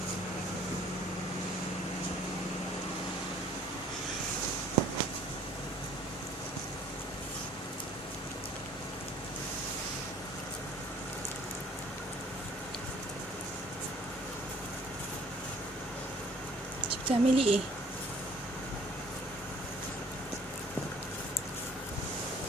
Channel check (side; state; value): both; normal; correlation 0.55